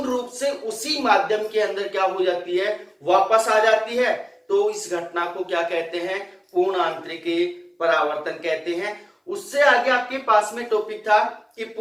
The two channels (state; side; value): identical; both; correlation 1.00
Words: रूप से उसी माध्यम के अंदर क्या हो जाती है, वापस आ जाती है, तो इस घटना को क्या कहते हैं, पूर्ण आंतरिक परावर्तन कहते हैं। उससे आगे आपके पास में टॉपिक था कि